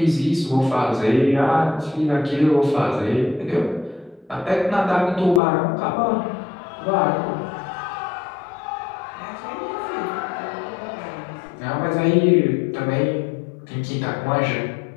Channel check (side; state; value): right; drops out; at 5.4 s